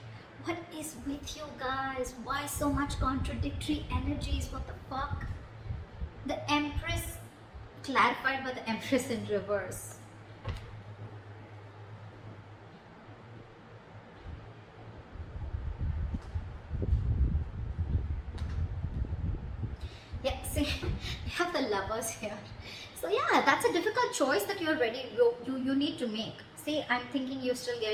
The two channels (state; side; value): identical; both; correlation 1.00